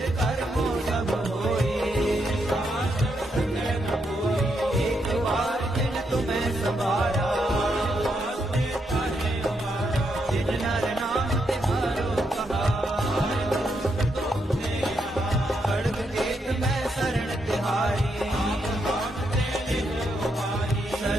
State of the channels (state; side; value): normal; both; correlation 0.80